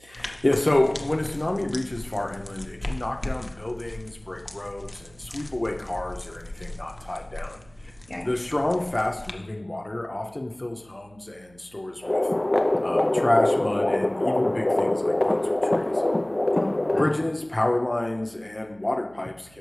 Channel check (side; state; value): right; noise; hum, 28 dB below the sound